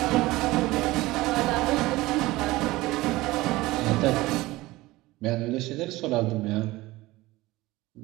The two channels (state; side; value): quieter; left; 19.1 dB